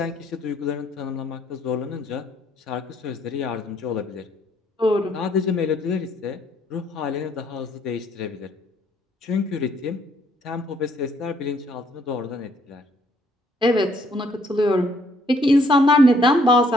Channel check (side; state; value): both; normal; correlation 0.67